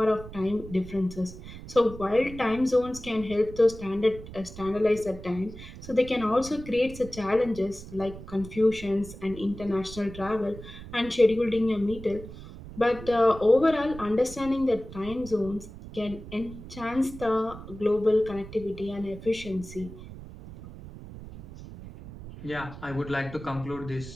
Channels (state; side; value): noise; right; rumble, 14 dB below the sound